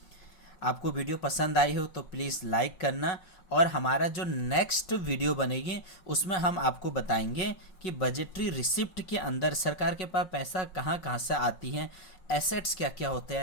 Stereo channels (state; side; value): late; right; 5.5 ms